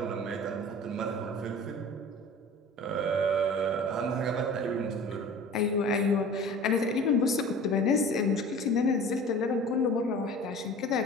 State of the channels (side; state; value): both; normal; correlation 0.41